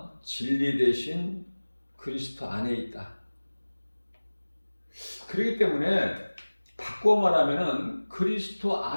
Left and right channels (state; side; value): inverted; both; correlation -1.00